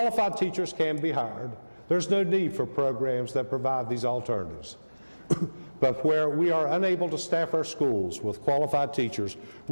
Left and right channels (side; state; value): both; inverted; correlation -1.00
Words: teachers can be hired, there's no need for programs that provide these alternatives. But where we are unable to staff our schools with qualified teachers,